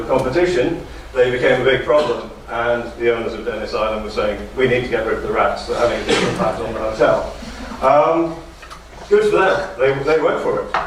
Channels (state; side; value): identical; both; correlation 1.00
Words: competition, they became a big problem, and the owners of Dennis Island were saying, we need to get rid of the rats, they're having a big impact on the hotel. Good for them, they went for